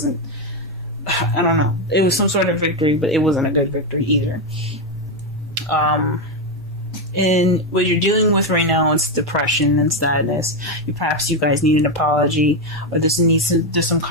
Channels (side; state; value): both; normal; correlation 0.07